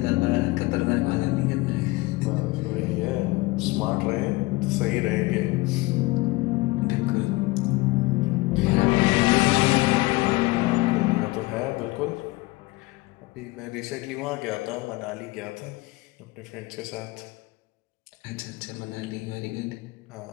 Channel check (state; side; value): quieter; right; 22.3 dB